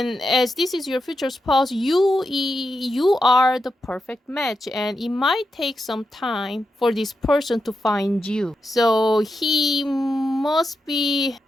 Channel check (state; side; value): normal; both; correlation 0.87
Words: as this is your future spouse, you are the perfect match, and it might take some time for this person to find you. So he must be